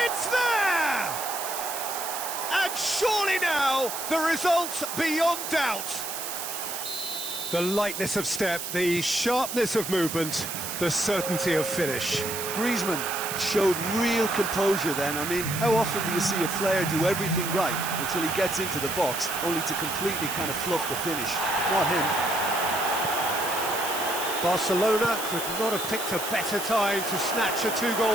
it's there! And surely now, the result beyond doubt. The lightness of step, the sharpness of movement, the certainty of finish. Griezmann showed real composure then. I mean, how often do you see a player do everything right until he gets into the box, only to completely kind of fluff the finish? Not him. Barcelona could not have picked a better time to snatch a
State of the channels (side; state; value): right; noise; hiss, 6 dB below the sound